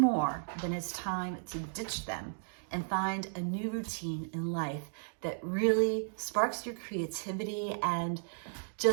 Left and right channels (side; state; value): left; silent; digital silence